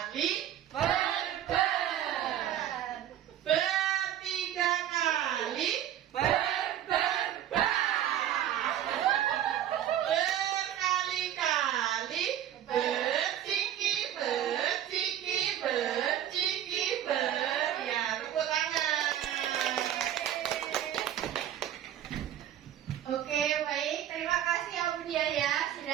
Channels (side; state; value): left; quieter; 11.2 dB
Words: bertiga kali, berkali-kali, berciki, ya, tepuk tangan. Oke, baik. Terima kasih ya Bu Dia ya,